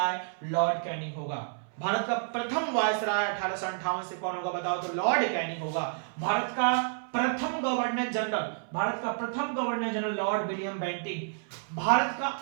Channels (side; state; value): left; silent; 58 dB below the other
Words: लॉर्ड कैनिंग होगा। भारत का प्रथम वायसराय 1858 से कौन होगा बताओ, तो लॉर्ड कैनिंग होगा। भारत का प्रथम governor general lord William Bentinck. Bharat का